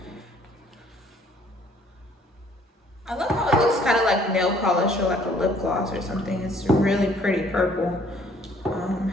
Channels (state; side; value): normal; both; correlation 0.60